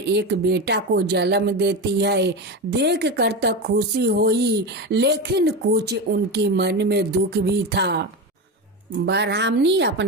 बेटा को जन्म देती है। देख कर तो खुशी हुई, लेकिन कुछ उनकी मन में दुख भी था। ब्राह्मणी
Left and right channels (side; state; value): both; normal; correlation 0.19